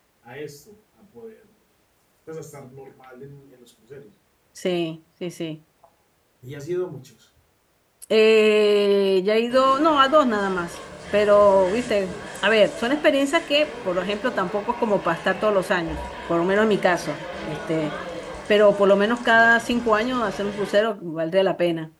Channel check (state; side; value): identical; both; correlation 1.00